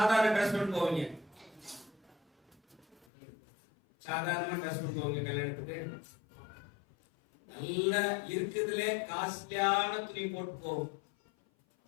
ட்ரெஸ் பண்ணி போவீங்க? சாதாரணமா ட்ரெஸ் பண்ணி போவீங்க கல்யாணத்துக்கு? நல்ல இருக்குதுலே காஸ்ட்லியான துணி போட்டு போவோம்.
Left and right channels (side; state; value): right; drops out; at 3.1 s